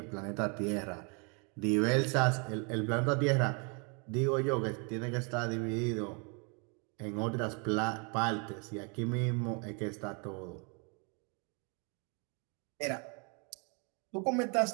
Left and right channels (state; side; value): quieter; left; 35.0 dB